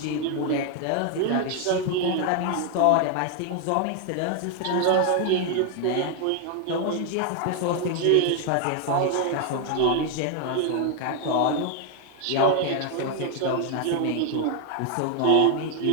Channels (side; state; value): both; different; correlation 0.00